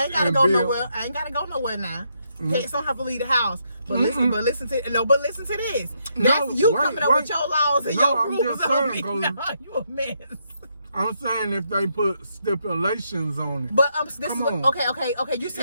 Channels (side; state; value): both; inverted; correlation -0.77